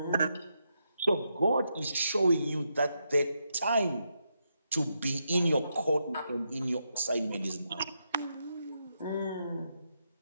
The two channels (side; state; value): both; inverted; correlation -0.83